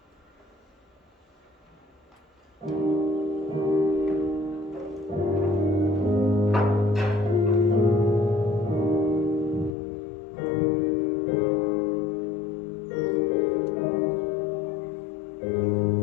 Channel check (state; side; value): drops out; right; at 9.8 s